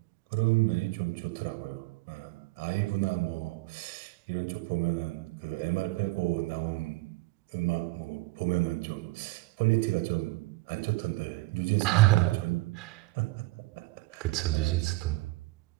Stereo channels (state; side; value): quieter; left; 21.5 dB